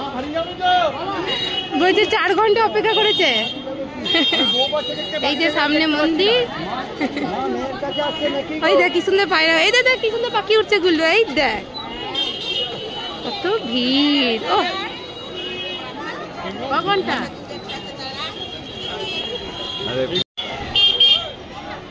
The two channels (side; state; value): both; identical; correlation 1.00